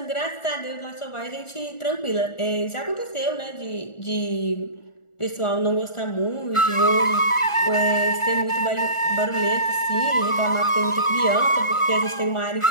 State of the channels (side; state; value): right; late; 1.4 ms